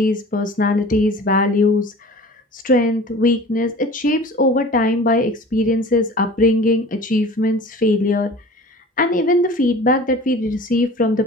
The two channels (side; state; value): both; normal; correlation 0.42